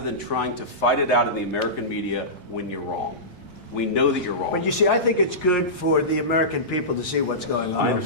trying to fight it out in the American media when you're wrong. We know that you're wrong. But you see, I think it's good for the American people to see what's going on. I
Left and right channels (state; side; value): late; left; 1.6 ms